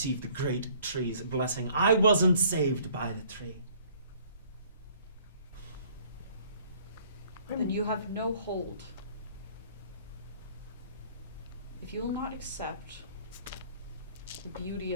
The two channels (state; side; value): inverted; both; correlation -0.57